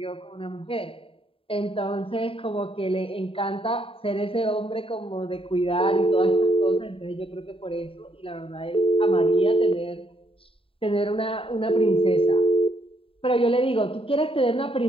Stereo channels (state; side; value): late; right; 0.27 ms